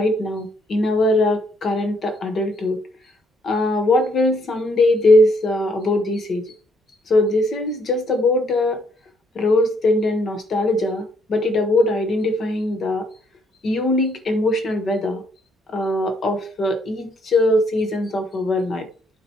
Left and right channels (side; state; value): both; normal; correlation 0.70